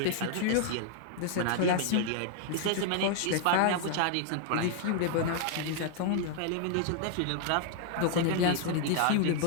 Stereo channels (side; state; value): both; different; correlation 0.00